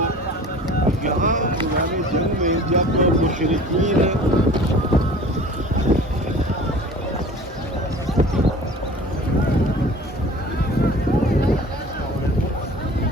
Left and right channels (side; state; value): both; normal; correlation 0.43